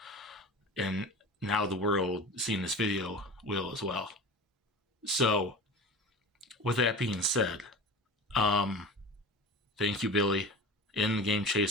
And now the world seeing this video will as well. So with that being said, thank you, Billy, in the Game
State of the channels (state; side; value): normal; both; correlation 0.34